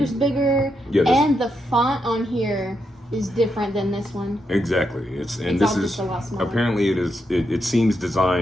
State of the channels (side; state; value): both; normal; correlation 0.82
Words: bigger, and the font on here is different than this one. Exactly. This is apparently it seems